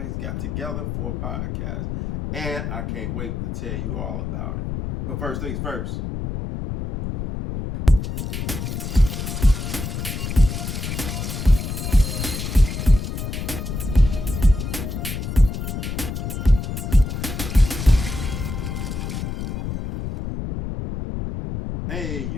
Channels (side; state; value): left; noise; rumble, 4 dB below the sound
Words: got together for a podcast, and I can't wait to tell you all about it. But first things first. Hey,